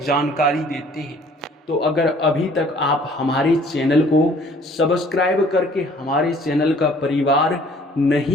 जानकारी देते हैं। तो अगर अभी तक आप हमारे चैनल को सब्सक्राइब करके हमारे चैनल का परिवार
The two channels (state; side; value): normal; both; correlation 0.56